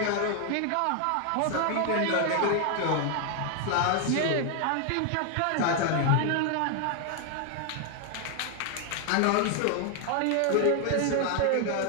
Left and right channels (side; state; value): both; different; correlation 0.00